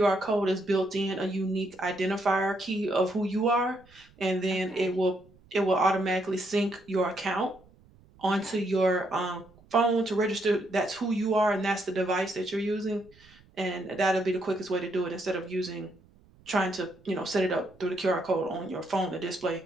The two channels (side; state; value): right; noise; rumble, 28 dB below the sound